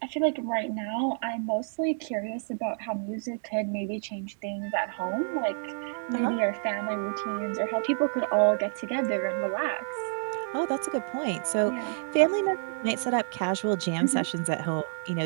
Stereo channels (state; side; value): silent; left; digital silence